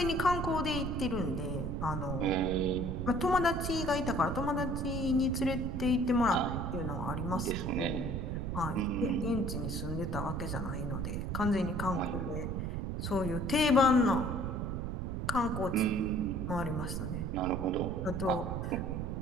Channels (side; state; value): right; noise; rumble, 2 dB below the sound